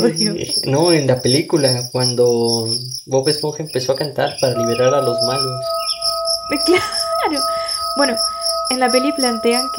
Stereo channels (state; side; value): identical; both; correlation 1.00